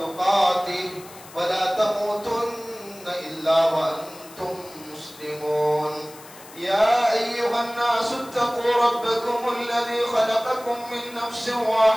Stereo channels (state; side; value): noise; left; hiss, 20 dB below the sound